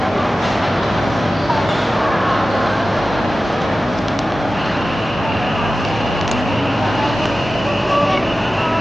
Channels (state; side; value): normal; both; correlation 0.95